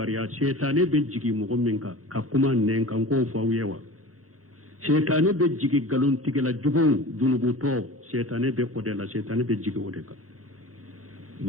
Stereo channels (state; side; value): late; left; 0.65 ms